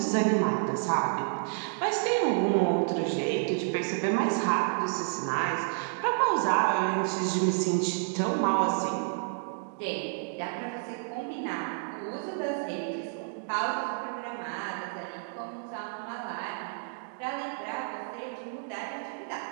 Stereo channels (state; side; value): silent; left; digital silence